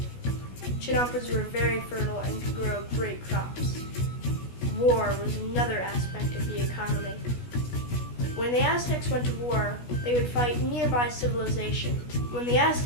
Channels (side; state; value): right; late; 16 ms